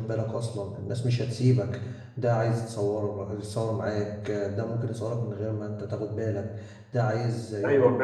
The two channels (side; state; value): both; identical; correlation 1.00